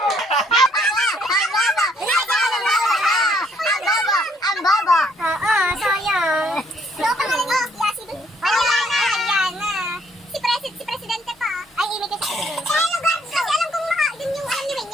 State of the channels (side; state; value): both; normal; correlation 0.67